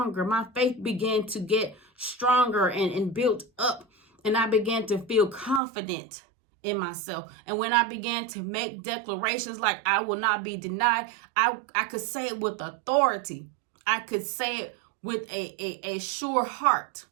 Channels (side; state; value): left; drops out; at 5.6 s